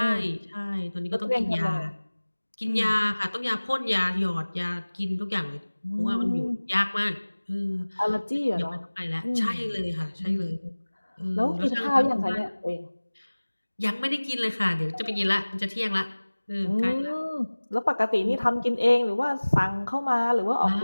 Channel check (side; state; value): both; inverted; correlation -1.00